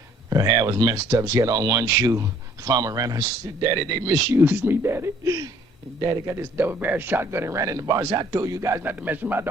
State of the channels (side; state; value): both; normal; correlation 0.59